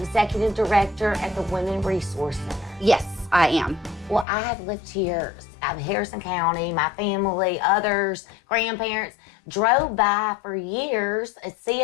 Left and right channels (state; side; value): drops out; right; at 4.2 s